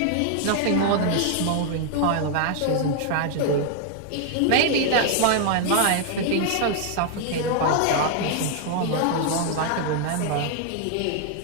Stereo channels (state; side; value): different; both; correlation 0.00